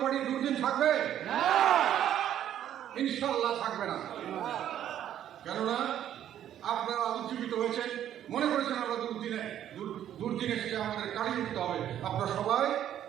পার্টির দুর্দিন থাকবে? ইনশাল্লাহ থাকবে না। কেননা আপনারা উজ্জীবিত হয়েছেন, মনে করেছেন আমরা দুর্দিনে এসে আমাদের কাটিয়ে উঠতে হবে। আপনারা সবাই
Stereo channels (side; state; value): left; quieter; 10.9 dB